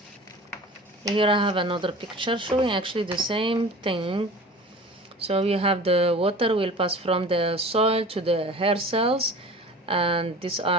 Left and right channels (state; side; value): normal; both; correlation 0.39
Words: Here I have another picture showing actually the same thing. So you have the water will pass from the soil to the hair cells, and these